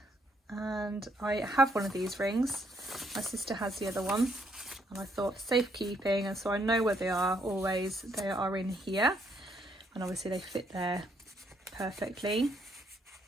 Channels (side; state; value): both; normal; correlation 0.71